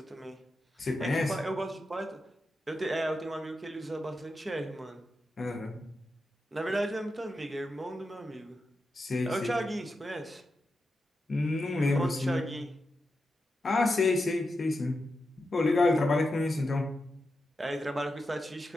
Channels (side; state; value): both; normal; correlation 0.89